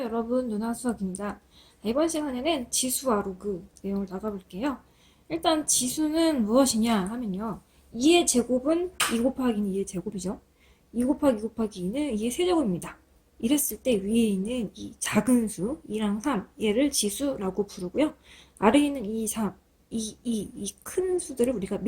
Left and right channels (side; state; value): both; identical; correlation 1.00